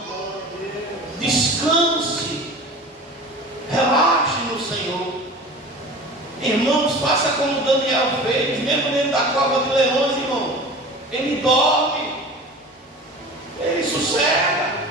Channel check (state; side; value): normal; both; correlation 0.37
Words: Descanse. Relaxe no Senhor. Irmãos, faça como Daniel fez, mesmo dentro da cova de leões, irmão. Ele dorme. Ele sossega.